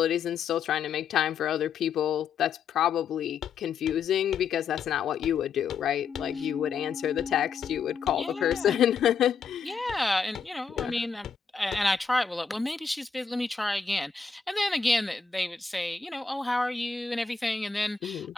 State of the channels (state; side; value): quieter; right; 5.9 dB